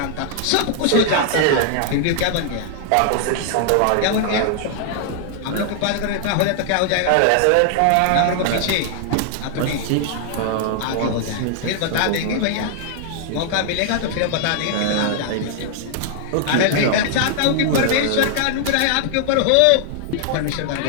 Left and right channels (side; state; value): both; different; correlation 0.00